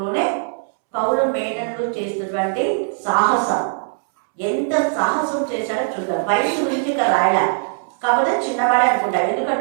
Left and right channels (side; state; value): left; silent; 66 dB below the other